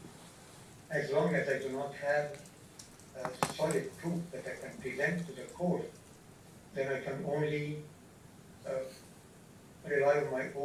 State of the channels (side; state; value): both; identical; correlation 1.00